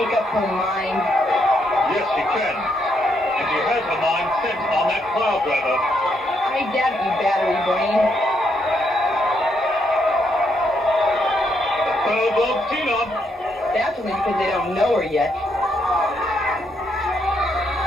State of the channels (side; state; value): both; normal; correlation 0.76